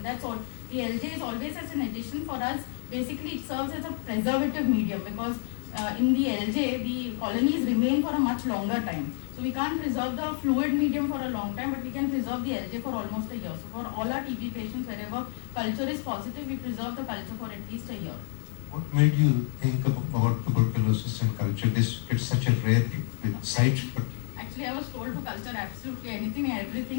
That's all. The LJ is always as an addition for us. Basically, it serves as a preservative medium because in the LJ, the colonies remain for a much longer time. So we can't preserve the fluid medium for a long time, but we can preserve the LJ for almost a year. So for all our TB patients, wherever culture is positive, we preserve the culture for at least a year. What made you think about tuberculosis and culture? It's such a rare site. Actually, I was told to culture absolutely anything and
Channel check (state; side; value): silent; right; digital silence